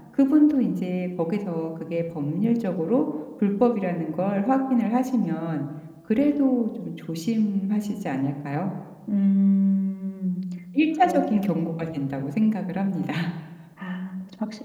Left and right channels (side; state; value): both; identical; correlation 1.00